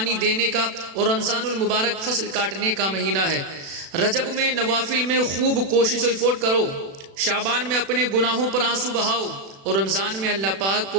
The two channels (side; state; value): left; late; 36 ms